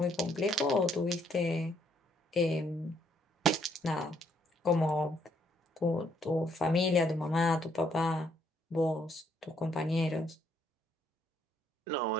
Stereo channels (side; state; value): both; normal; correlation 0.70